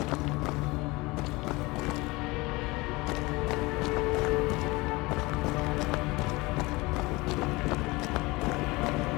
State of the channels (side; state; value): right; quieter; 22.9 dB